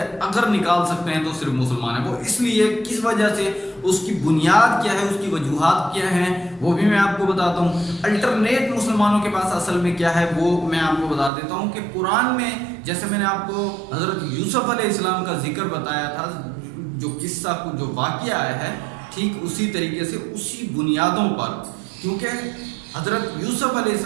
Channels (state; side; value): drops out; left; at 11.3 s